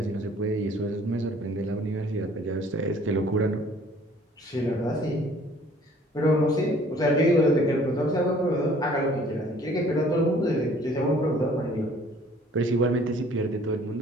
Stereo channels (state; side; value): normal; both; correlation 0.55